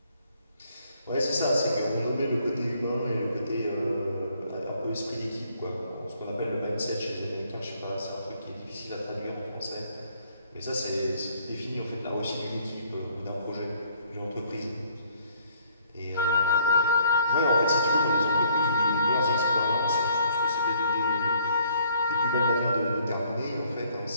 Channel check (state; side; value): inverted; both; correlation -0.63